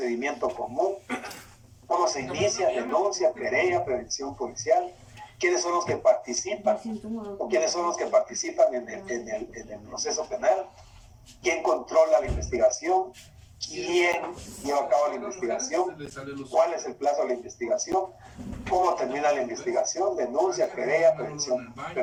común, cómo se inicia, denuncia, querella, prevención policial, quiénes son los que participan o quiénes son los que participan en el proceso penal, quién controla la investigación, quién lleva a cabo la investigación, cuál es el plazo de la investigación, cómo termina la investigación, denuncia, querella, prevención,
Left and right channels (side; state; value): both; identical; correlation 1.00